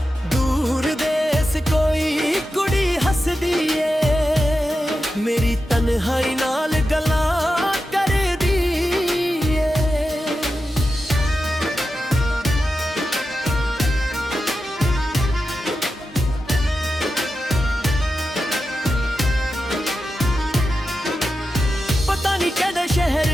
ਦੂਰ ਦੇਸ ਕੋਈ ਕੁੜੀ ਹੱਸਦੀ ਏ, ਮੇਰੀ ਤਨਹਾਈ ਨਾਲ ਗੱਲਾਂ ਕਰਦੀ ਏ। ਪਤਾ ਨਹੀਂ ਕਿਹੜੇ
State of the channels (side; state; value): both; normal; correlation 0.90